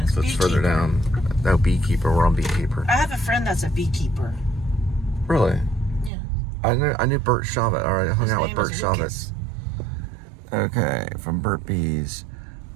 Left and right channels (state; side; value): drops out; left; at 6.1 s